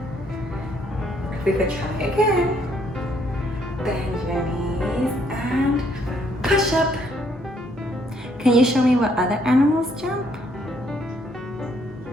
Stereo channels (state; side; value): normal; both; correlation 0.69